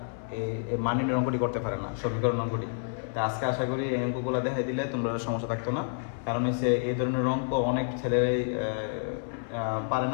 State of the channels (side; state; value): right; silent; 58 dB below the other